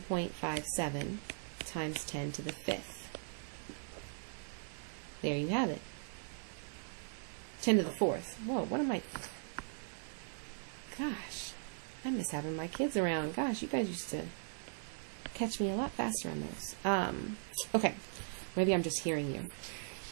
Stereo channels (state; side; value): silent; left; digital silence